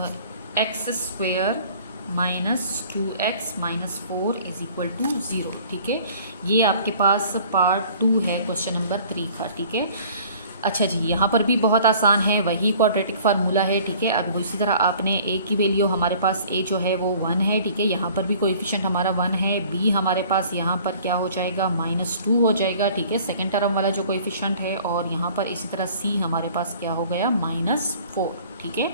x² - 2x - 4 = 0। ठीक है, ये आपके पास पार्ट 2 है क्वेश्चन नंबर 3 का। ठीक है, अच्छा जी, यहाँ पर भी बहुत आसान है, वही क्वाड्रेटिक फार्मूला है। ठीक है, अब इसी तरह आपने a की वैल्यू, हमारे पास a जो है वो 1 है। ठीक है, यहाँ पर भी कोएफिशिएंट हमारा 1 है। b हमारे पास यहाँ पर क्या हो जाएगा, -2 हो जाएगा। ठीक है, सेकंड टर्म वाला जो कोएफिशिएंट है, और यहाँ पर इसी तरह c हमारे पास क्या हो गया, -4। ठीक है,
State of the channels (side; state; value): both; inverted; correlation -0.51